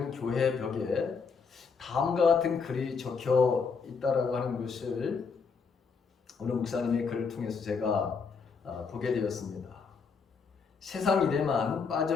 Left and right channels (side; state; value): right; quieter; 5.4 dB